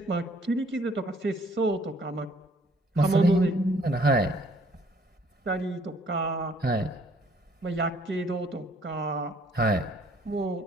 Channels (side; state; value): both; normal; correlation 0.61